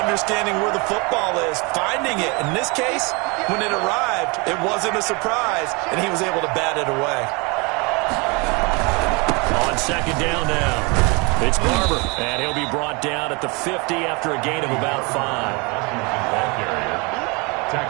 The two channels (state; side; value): quieter; left; 29.0 dB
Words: understanding where the football is, finding it. In this case, when it arrived, it wasn't a surprise, and he was able to bat it away. On second down now. It's Barber, and he'll be brought down at the 50 after a gain of about 5. Washington ball carrier.